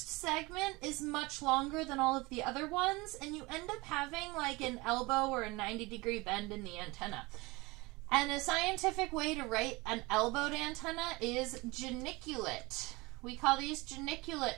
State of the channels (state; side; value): quieter; left; 23.5 dB